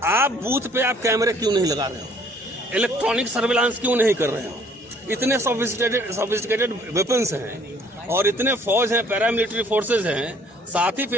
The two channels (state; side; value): normal; both; correlation 0.59